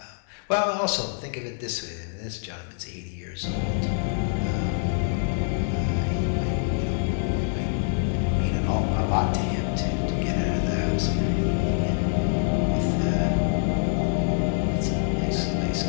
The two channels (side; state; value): right; silent; digital silence